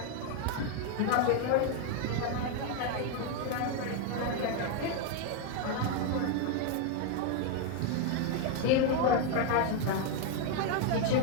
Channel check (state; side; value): different; both; correlation 0.01